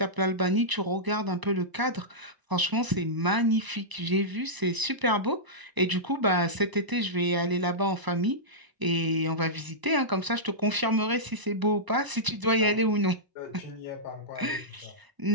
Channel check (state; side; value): late; left; 1.0 ms